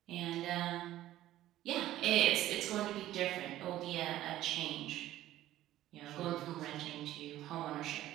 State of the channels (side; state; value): left; quieter; 14.1 dB